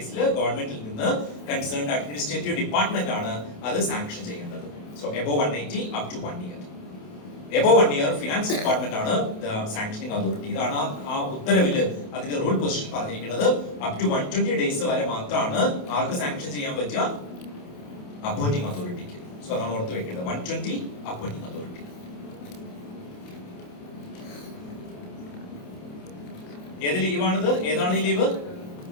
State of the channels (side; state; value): right; late; 28 ms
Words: ഗവൺമെന്റിൽ നിന്ന് കൺസേൺഡ് അഡ്മിനിസ്ട്രേറ്റീവ് ഡിപ്പാർട്ട്മെന്റ് ആണ് അത് സാങ്ഷൻ ചെയ്യേണ്ടത്. So above 180 up to 1 year. Above 1 year finance department ആണ് ദ സാങ്ഷനിങ് അതോറിറ്റി. ഇതാണ് ആ ഉത്തരവില് അതിന്റെ റൂൾ പൊസിഷൻ പറഞ്ഞിരിക്കുന്നത്. അപ് ടു 120 ഡേയ്സ് വരെ മാത്രമാണ് ആർക്ക് സാങ്ഷൻ ചെയ്യാൻ പറ്റുക? അപ്പോയിന്റിംഗ് അതോറിറ്റിക്ക്. സോ അതാണ് ഓർത്ത് വെക്കേണ്ടത്, 120 അപ്പോയിന്റിംഗ് അതോറിറ്റി. ഏത് ലീവാണിത്? ഏതാണ് ഈ leave?